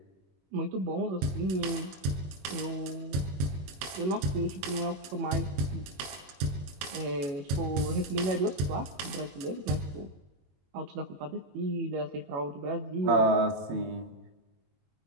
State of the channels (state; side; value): late; left; 22 ms